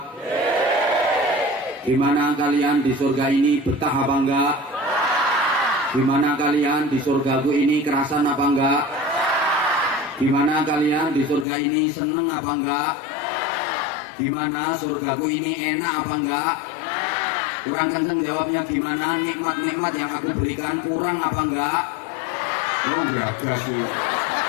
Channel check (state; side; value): drops out; right; at 11.5 s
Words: gimana kalian di surga ini, betah apa enggak? Gimana kalian di surgaku ini, kerasan apa enggak? Gimana kalian di surga ini, seneng apa enggak? Gimana surgaku ini, enak apa enggak? Kurang kenceng jawabnya gimana? Nikmat-nikmat yang aku berikan kurang apa enggak? Oh geragas sih.